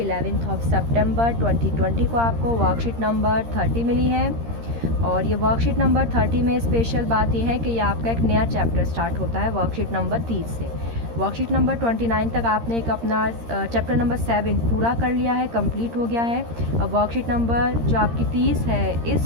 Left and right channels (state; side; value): late; left; 13 ms